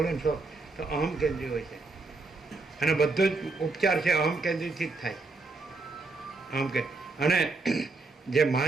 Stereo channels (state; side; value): quieter; left; 3.6 dB